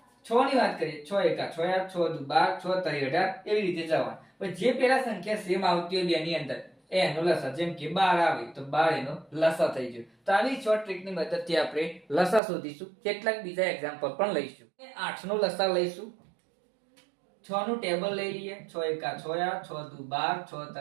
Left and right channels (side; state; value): left; drops out; at 12.4 s